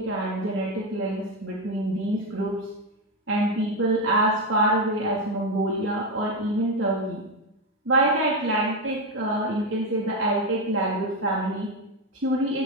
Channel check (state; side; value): normal; both; correlation 0.10